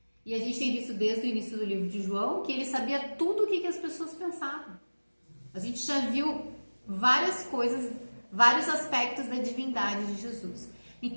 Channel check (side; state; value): both; inverted; correlation -1.00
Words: E a gente tem visto desde o início do livro de João que ele sabia tudo o que as pessoas pensavam. A gente já viu várias coisas, vários aspectos da divindade de Jesus.